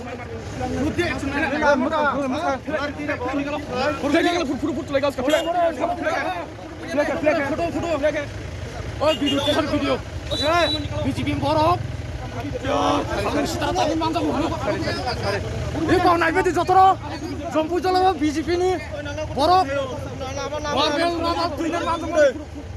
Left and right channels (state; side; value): identical; both; correlation 1.00